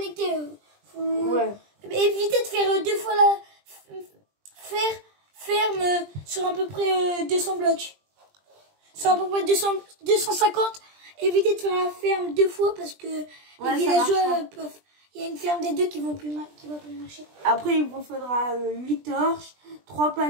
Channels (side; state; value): left; late; 20 ms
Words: Ouais. Évitez de faire 2 fois la ferme sur à peu près 200 blocs. Sur à peu près 250. Évitez de faire la ferme 2 fois parce que les villageois peuvent. Il y a une ferme des 2 qui va plus marcher. Après, il vous faudra 8 torches, 3